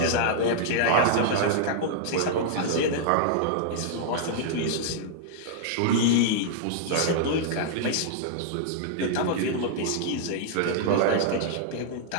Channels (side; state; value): both; different; correlation -0.01